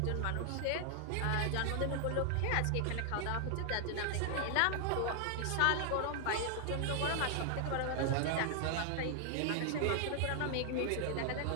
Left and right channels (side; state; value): both; different; correlation 0.00